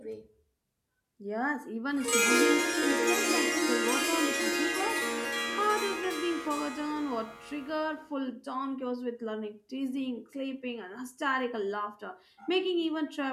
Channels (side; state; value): both; identical; correlation 1.00